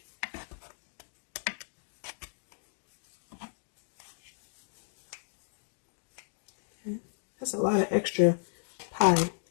Okay. That's a lot of extra pie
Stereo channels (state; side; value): silent; right; digital silence